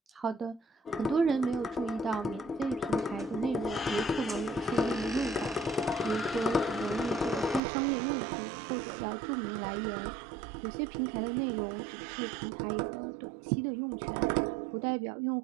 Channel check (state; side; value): drops out; left; at 7.6 s